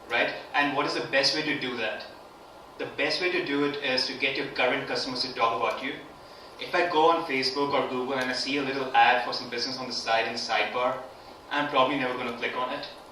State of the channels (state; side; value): identical; both; correlation 1.00